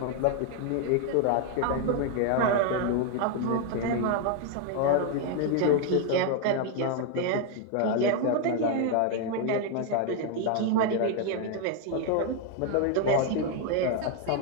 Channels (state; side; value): different; both; correlation 0.00